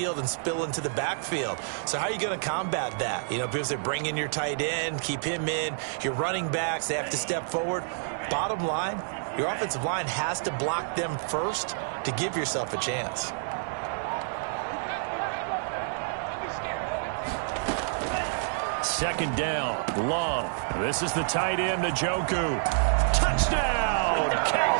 and spill into the backfield. So how are you going to combat that? You know, because they bring in your tight end, keep him in. Your running backs, they have to step forward. Bottom line, your offensive line has to block them first to give yourself a chance. Second down, Love. This is the tight end, Njoku. Touchdown,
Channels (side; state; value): left; silent; digital silence